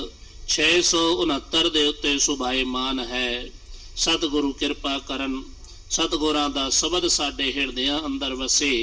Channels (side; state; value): both; identical; correlation 1.00